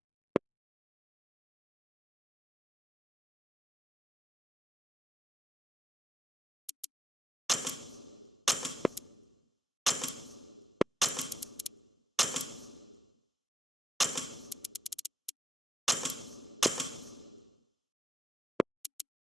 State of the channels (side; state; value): both; normal; correlation 0.80